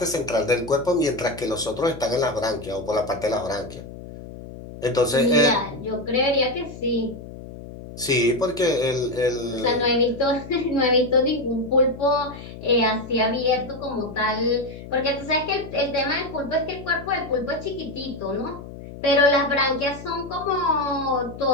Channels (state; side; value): noise; left; hum, 13 dB below the sound